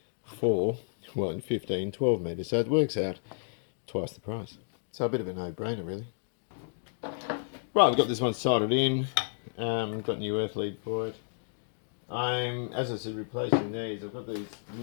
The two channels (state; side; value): silent; right; digital silence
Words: for, well, in 15, 12 meters. So it works out twice the price. So a bit of a no-brainer really. Right, we've got this one soldered in. Got a new earth lead for it. I'm, as I said, replacing these. I've got these